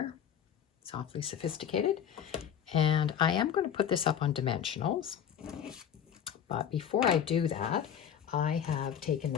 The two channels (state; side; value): quieter; right; 8.8 dB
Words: It's awfully sophisticated. And I am going to put this up on dimensionals. But before I do that, I have taken